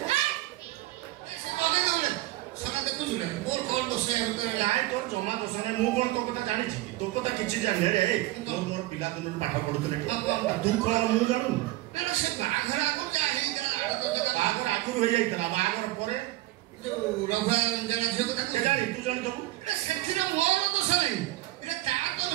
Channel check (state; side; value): quieter; left; 17.3 dB